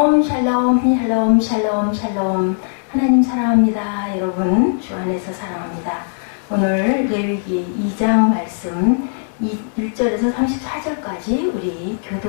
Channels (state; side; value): silent; right; 67 dB below the other